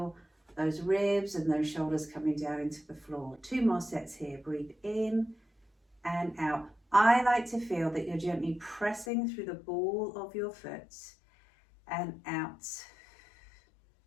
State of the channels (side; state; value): right; drops out; at 9.1 s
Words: those ribs and those shoulders coming down into the floor. 2 more sets here. Breathe in and out. I like to feel that you're gently pressing through the ball of your foot and out